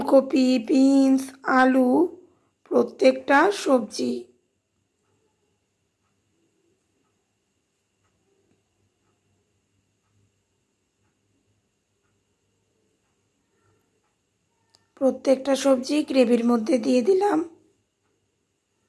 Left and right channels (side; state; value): both; identical; correlation 1.00